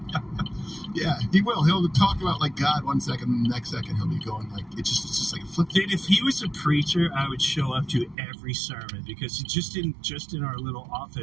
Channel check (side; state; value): left; drops out; at 8.2 s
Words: Yeah, he will. He'll talk about like God 1 second, and the next second he'll be going like it's just like a flip. Dude, if he was a preacher, I would show up to every sermon because just in our little